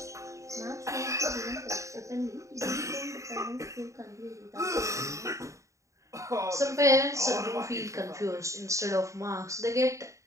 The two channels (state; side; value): late; left; 0.15 ms